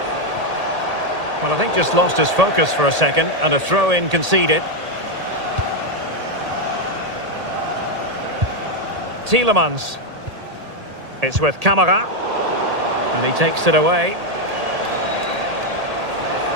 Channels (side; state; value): left; late; 1.8 ms